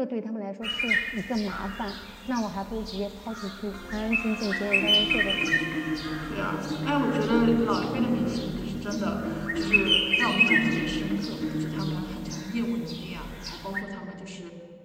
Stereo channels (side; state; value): both; identical; correlation 1.00